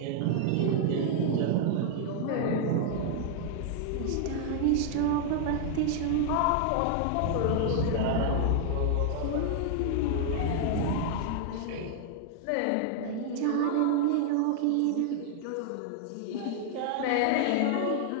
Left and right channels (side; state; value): both; different; correlation 0.00